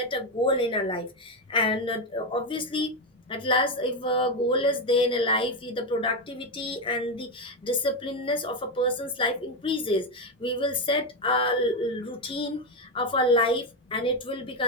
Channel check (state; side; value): normal; both; correlation 0.09